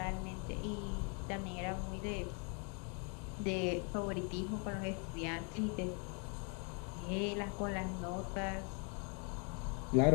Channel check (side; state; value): right; quieter; 37.3 dB